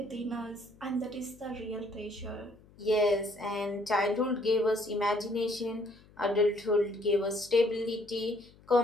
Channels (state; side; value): noise; left; hum, 26 dB below the sound